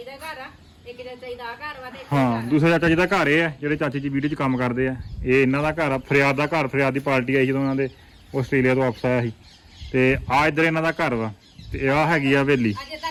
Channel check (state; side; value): identical; both; correlation 1.00